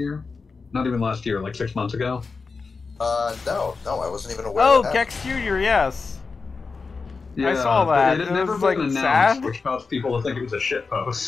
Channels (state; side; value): quieter; right; 4.5 dB